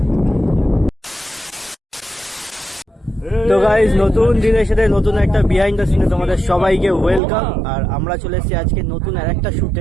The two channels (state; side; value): drops out; left; at 7.2 s